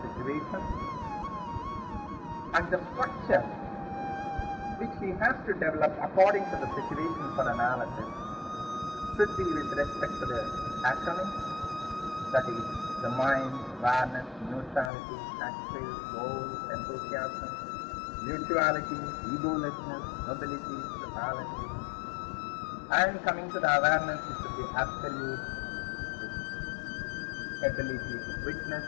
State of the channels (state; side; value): drops out; right; at 14.9 s